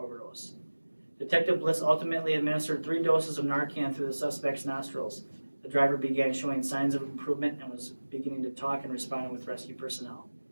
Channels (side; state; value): both; inverted; correlation -1.00